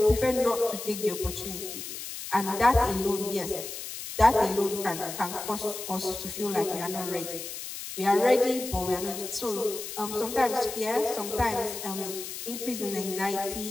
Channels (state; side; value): noise; left; hiss, 8 dB below the sound